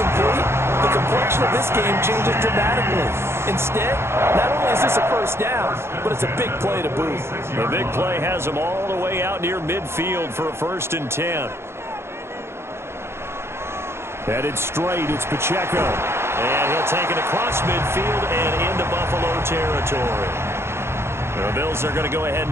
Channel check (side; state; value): left; late; 0.12 ms